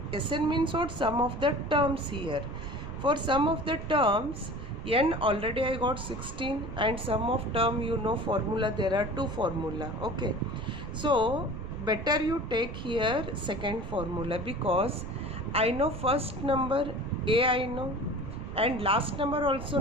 Sn means what? Sum of the terms here. For sum of the terms, n already I got 16, and sum of term, you know formula, there are two formula. Okay, so better you take here second formula, because I know first number a, I know, and last number also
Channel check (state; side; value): noise; right; rumble, 8 dB below the sound